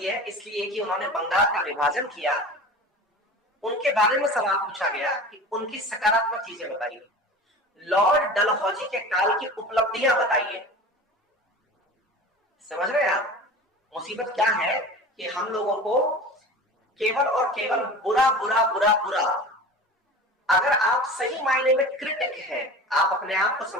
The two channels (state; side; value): normal; both; correlation 0.36